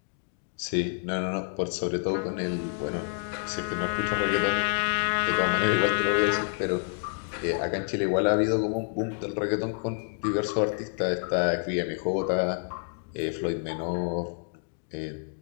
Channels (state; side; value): silent; right; 59 dB below the other